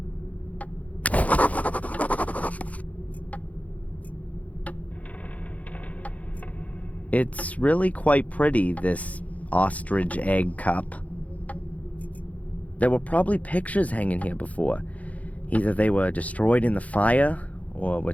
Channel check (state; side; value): late; right; 0.069 ms